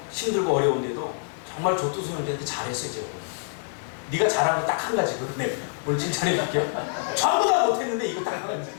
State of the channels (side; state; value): right; silent; digital silence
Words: 힘들고 어려운데도 정말 조투수 형제한테 잘했어요. 제가. 네가 잘한 거 딱 한 가지 그러네. 오늘 칭찬해줄게요. 전부 다 못했는데 이거 딱 한 가지